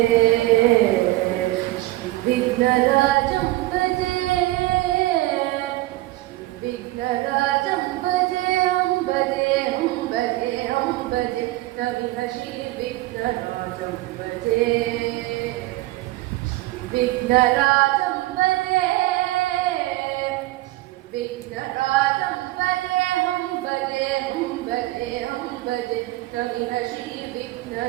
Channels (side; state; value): left; quieter; 18.3 dB